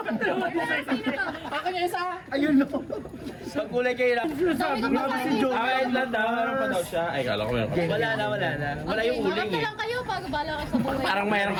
Akin yung isa. Ayun no. Pagkulay kayo lang. Grabe si Joe. Ay, lang daw. Meron pa daw siya. Ay, kala ko meron pa. Wala na, wala na. Wala yung uling Maganda eh. lang kayo pag bala kayo sa buhay. Parang mayroong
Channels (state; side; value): identical; both; correlation 1.00